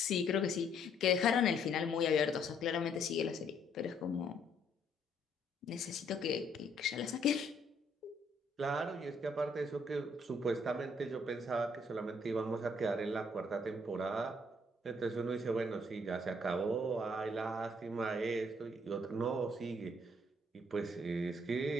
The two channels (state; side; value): normal; both; correlation 0.67